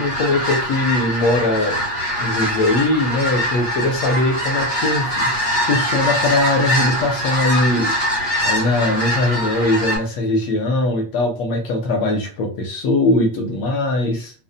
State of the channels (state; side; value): late; right; 8.4 ms